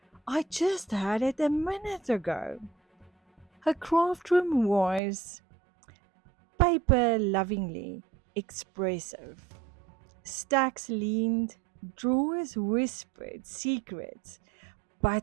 I just had it a minute ago. Her craft room was paper lovingly expressive. Stacks leaned, drawers whispered secrets,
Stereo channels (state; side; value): drops out; left; at 5.0 s